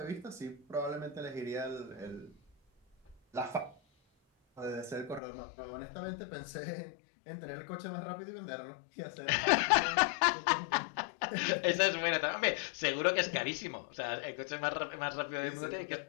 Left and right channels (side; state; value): right; drops out; at 5.2 s